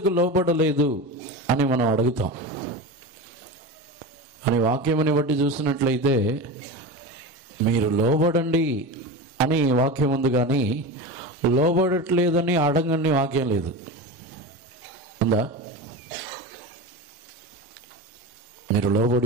లోబడలేదు అని మనం అడుగుతాం. అని వాక్యముని బట్టి చూసినట్లయితే మీరు లోబడండి అని వాక్యం ఉంది, కానీ లోబడట్లేదని అడగని వాక్యం లేదు. ఉందా? మీరు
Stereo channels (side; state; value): both; normal; correlation 0.25